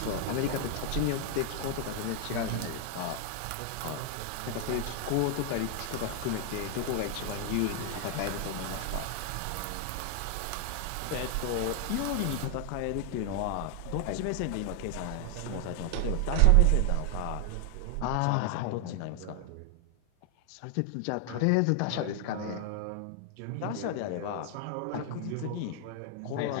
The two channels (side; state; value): both; different; correlation 0.00